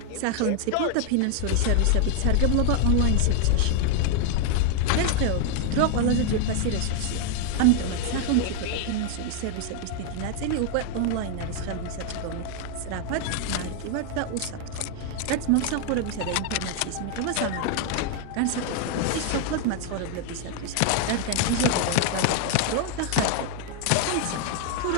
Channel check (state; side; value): different; both; correlation 0.00